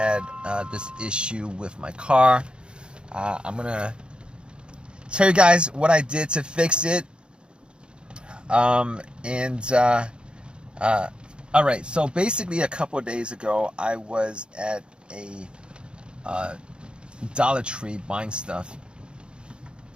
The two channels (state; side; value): late; left; 0.053 ms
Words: this issue with my car. I'm gonna tell you guys what I did to fix it. All right, so basically a couple of days ago, I was at a Dollar Tree buying stuff.